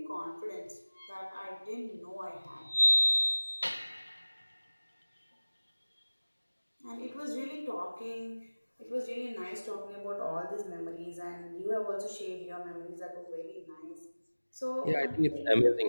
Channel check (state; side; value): inverted; both; correlation -1.00